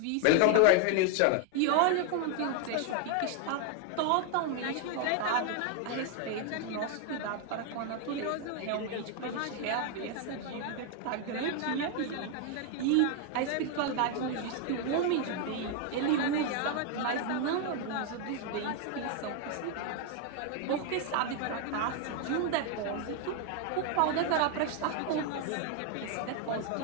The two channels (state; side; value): different; both; correlation 0.01